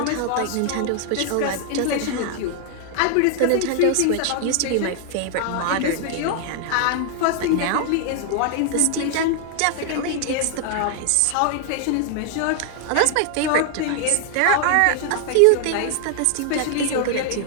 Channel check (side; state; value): both; different; correlation 0.00